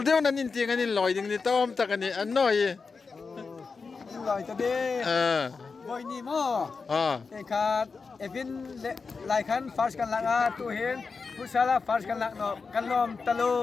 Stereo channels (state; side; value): quieter; right; 4.7 dB